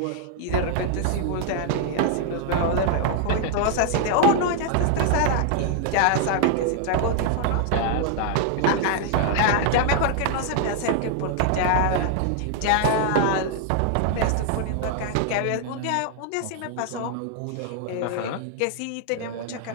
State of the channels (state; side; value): different; both; correlation 0.00